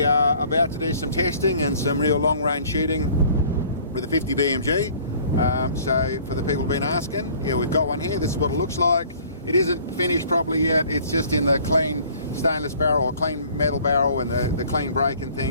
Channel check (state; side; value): inverted; both; correlation -0.53